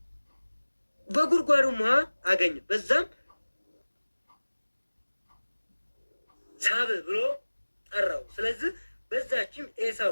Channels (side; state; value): both; inverted; correlation -1.00